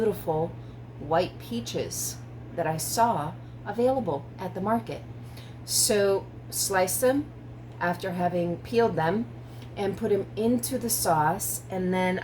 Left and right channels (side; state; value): both; identical; correlation 1.00